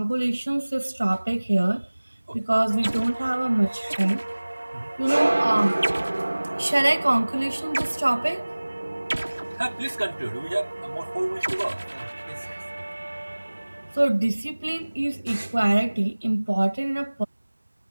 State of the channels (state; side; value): inverted; both; correlation -1.00